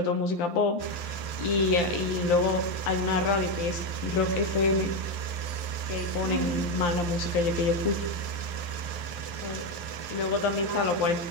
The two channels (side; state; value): right; late; 11 ms